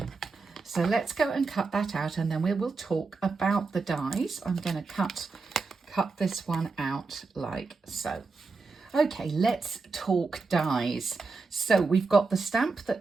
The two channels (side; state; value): left; quieter; 4.2 dB